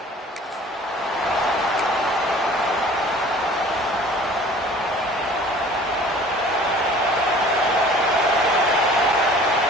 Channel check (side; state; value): both; normal; correlation 0.48